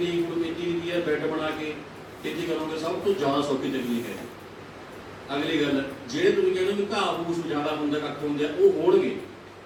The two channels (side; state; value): both; identical; correlation 1.00